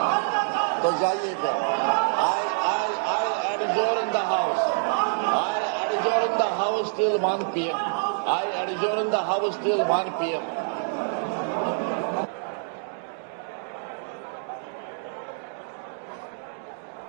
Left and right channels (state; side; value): silent; left; digital silence